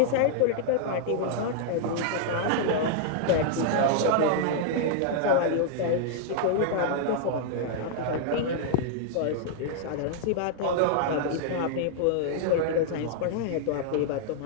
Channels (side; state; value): both; different; correlation -0.01